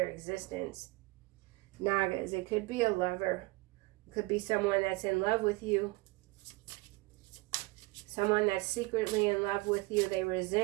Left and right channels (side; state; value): left; quieter; 22.8 dB